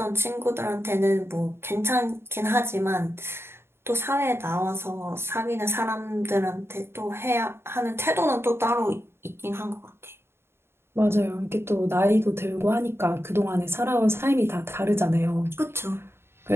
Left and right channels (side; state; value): left; late; 0.12 ms